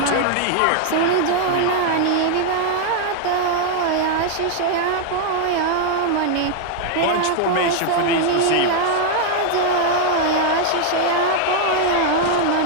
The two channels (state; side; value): different; both; correlation 0.00